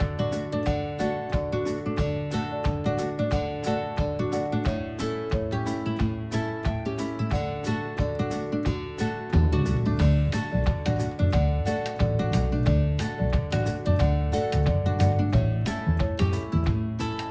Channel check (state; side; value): identical; both; correlation 1.00